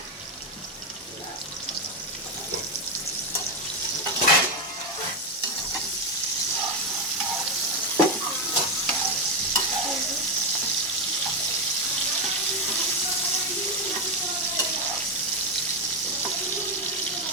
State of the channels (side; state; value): both; normal; correlation 0.08